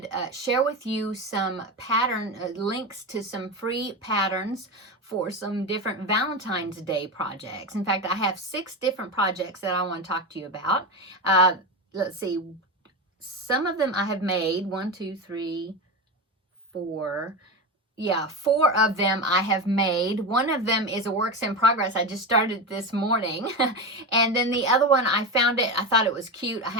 share with you some pattern links to some free patterns for some different Valentine's Day projects. In fact, I have 6 different projects that I want to talk to you about. Let's see. Some of them I have made. 1, 2, 3, 4. Yeah, 4 of them I have made. One of them is a works in progress. I just started this morning. And then the other one, I found it. I thought it was cute. I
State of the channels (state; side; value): normal; both; correlation 0.19